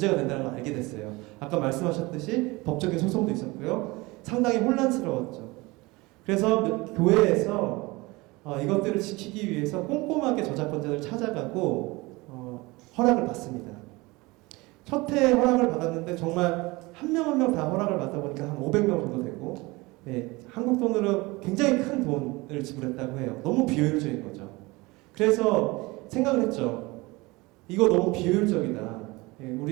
된다는 걸 알게 됐어요. 아까 말씀하셨듯이 법적인 소송도 있었고요. 상당히 혼란스러웠죠. 그래서 교회에서 이것들을 지키기 위해서 꼼꼼하게 저작권자를 찾아가고 허락을 받습니다. 첫 해 허락을 받았는데 정말 한 명 한 명 다 허락을 받다 보니까 한 500명 정도 되고, 한국 돈으로 굉장히 큰 돈을 지불했다고 해요. 너무 비효율적인 거죠. 그래서 생각을 했죠. 이거 너무 비효율적이다.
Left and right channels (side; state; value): left; quieter; 23.1 dB